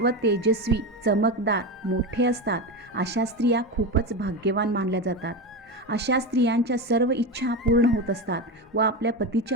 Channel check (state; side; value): normal; both; correlation 0.18